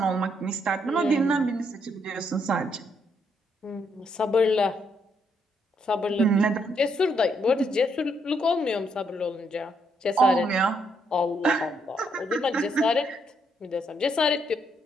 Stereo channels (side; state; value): both; normal; correlation 0.75